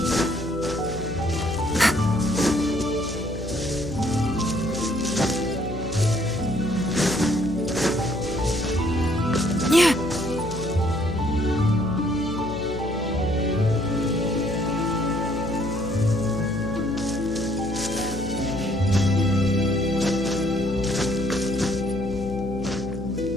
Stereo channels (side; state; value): left; noise; hum, 9 dB below the sound